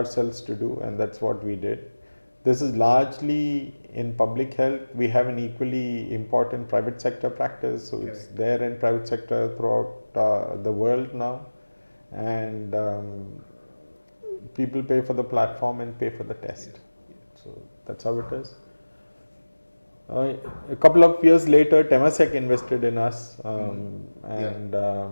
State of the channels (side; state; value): both; inverted; correlation -1.00